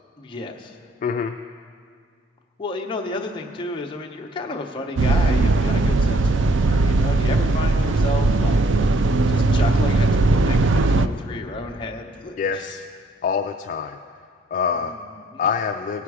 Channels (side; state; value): both; normal; correlation 0.63